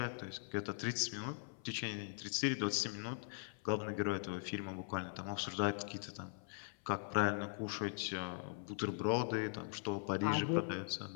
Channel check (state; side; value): silent; right; 50 dB below the other